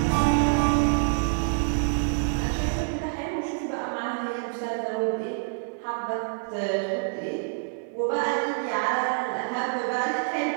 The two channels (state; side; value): silent; left; digital silence